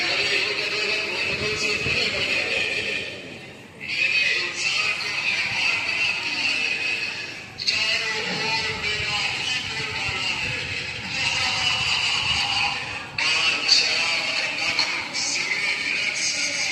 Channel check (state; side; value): identical; both; correlation 1.00